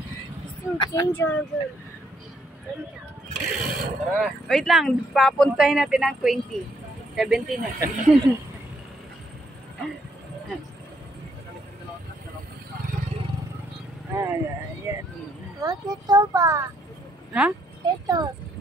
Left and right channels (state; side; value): normal; both; correlation 0.71